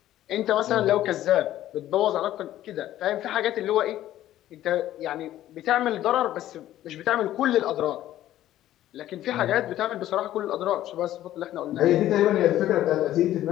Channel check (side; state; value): right; quieter; 13.3 dB